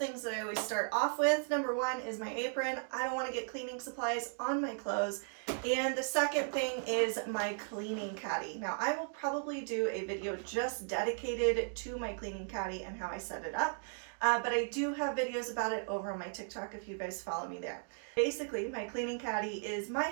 that I always start off with. Number one is my apron. I don't want to get cleaning supplies on my clothes. And the second thing is my cleaning caddy. Now, I will probably do a video just dedicated to my cleaning caddy and how I set it up. But I do have videos about it over on my TikTok if you guys follow me there. Basically, my cleaning caddy is my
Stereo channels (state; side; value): silent; left; 54 dB below the other